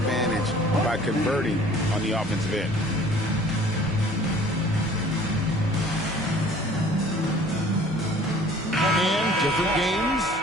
by converting on the offensive end. And different games,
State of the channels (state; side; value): normal; both; correlation 0.51